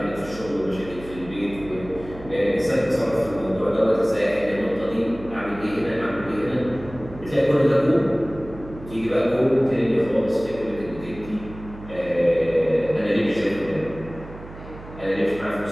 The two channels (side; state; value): right; noise; hum, 15 dB below the sound